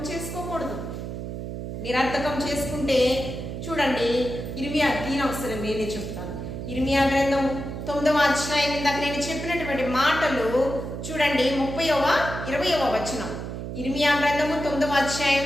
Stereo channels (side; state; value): right; noise; hum, 7 dB below the sound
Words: చేసుకోకూడదు. నిరర్థకం చేసుకుంటే చూడండి, ఇర్మియా తీనవసరం నేనే చెప్తాను. ఇర్మియా గ్రంథం 9వ అధ్యాయం, ఇందాక నేను చెప్పినటువంటి మాటలు చూడండి, 20వ వచనం. ఇర్మియా గ్రంథము 9వ